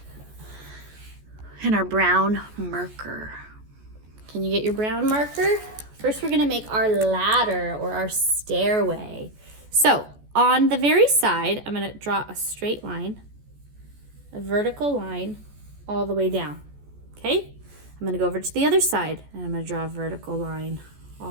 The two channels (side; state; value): left; late; 14 ms